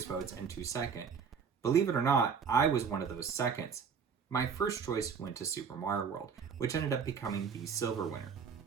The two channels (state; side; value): quieter; left; 6.3 dB